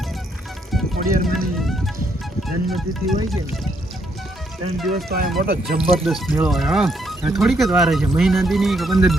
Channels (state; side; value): normal; both; correlation 0.74